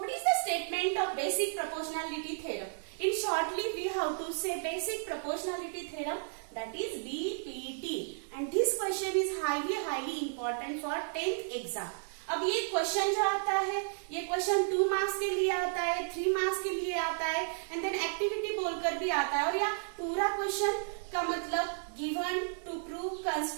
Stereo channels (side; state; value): left; silent; digital silence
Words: is the statement of basic proportionality theorem? In shortly, we have to say basic proportionality theorem, that is BPT. And this question is highly important for 10th exam. अब ये क्वेश्चन जो आता है, ये क्वेश्चन 2 मार्क्स के लिए आता है, 3 मार्क्स के लिए आता है, एंड देन एक्टिविटी बोलकर भी आता है। और यह पूरा क्वेश्चन का मतलब given, to prove,